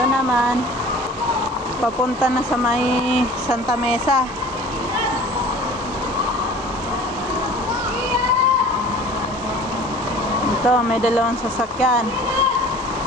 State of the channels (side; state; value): both; normal; correlation 0.44